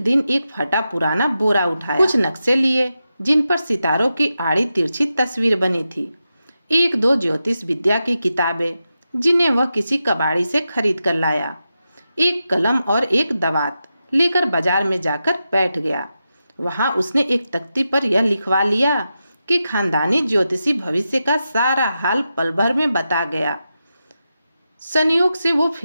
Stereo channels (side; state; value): both; inverted; correlation -0.89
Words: दिन एक फटा पुराना बोरा उठाया। कुछ नक्शे लिए जिन पर सितारों की आड़ी तिरछी तस्वीर बनी थी, 1-2 ज्योतिष विद्या की किताबें जिन्हें वह किसी कबाड़ी से खरीद कर लाया, एक कलम और एक दवात लेकर बाजार में जाकर बैठ गया। वहां उसने एक तख्ती पर यह लिखवा लिया कि खानदानी ज्योतिषी भविष्य का सारा हाल पल भर में बता गया। संयोग से वो